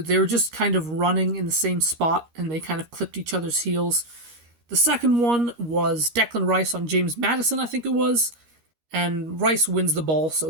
were just kind of running in the same spot, and they kind of clipped each other's heels. The second one was Declan Rice on James Maddison, I think it was, and Rice wins the ball, so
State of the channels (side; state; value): left; late; 13 ms